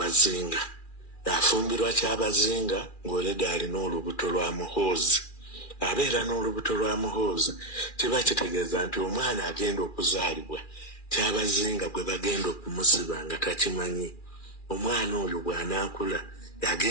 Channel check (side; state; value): right; late; 2.4 ms